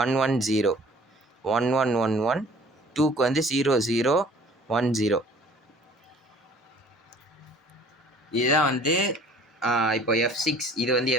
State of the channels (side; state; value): both; normal; correlation 0.51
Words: 1111. 2க்கு வந்து 0010. இதுதான் வந்து இப்போ F6, இது வந்து